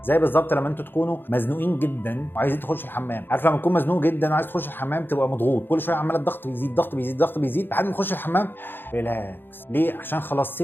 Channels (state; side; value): late; right; 0.099 ms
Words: زي بالظبط لما انتوا تكونوا مزنوقين جدا وعايزين تخش الحمام. عارف لما تكون مزنوق جدا وعايز تخش الحمام تبقى مضغوط، كل شويه عمال الضغط بيزيد ضغط بيزيد ضغط بيزيد لحد ما تخش الحمام ريلاكس. ليه؟ عشان خلاص